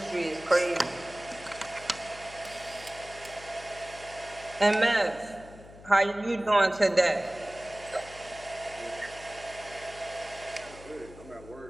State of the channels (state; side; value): noise; left; hum, 18 dB below the sound